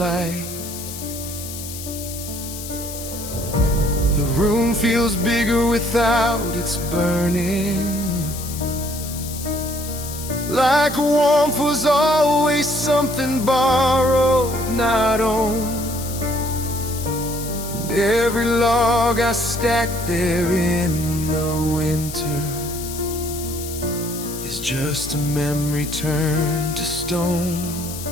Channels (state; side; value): noise; left; hiss, 10 dB below the sound